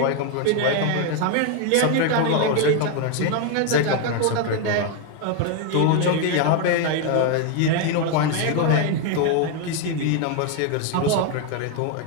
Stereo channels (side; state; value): both; different; correlation 0.01